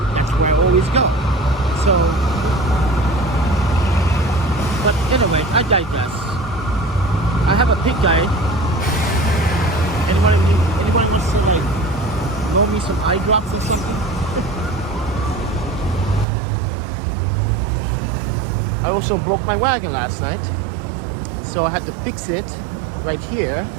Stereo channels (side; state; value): left; drops out; at 16.2 s